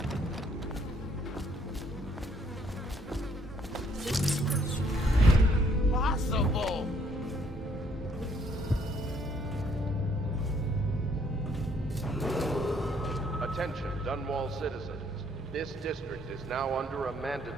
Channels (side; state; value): both; normal; correlation 0.66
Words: Possible! Attention, Dunwall citizens. This district is now under a